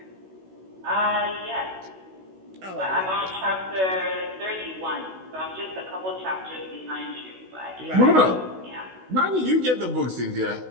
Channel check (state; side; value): late; left; 16 ms